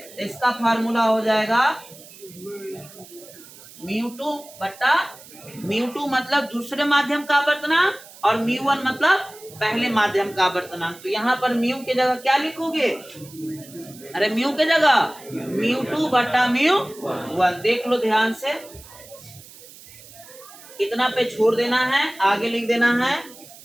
इसका फार्मूला हो जाएगा μ2 मतलब दूसरे माध्यम का अपवर्तनांक, और μ1 मतलब पहले माध्यम का अपवर्तनांक। तो यहाँ पर म्यू की जगह क्या लिखोगे, अरे म्यू के जगह μ2/μ1। देख लो ध्यान से, कितना पे छोड़ देना है, आगे लिख देना है,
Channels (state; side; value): noise; right; hiss, 20 dB below the sound